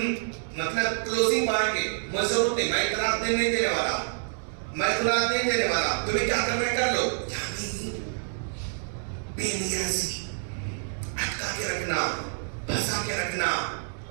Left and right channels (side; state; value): left; silent; 60 dB below the other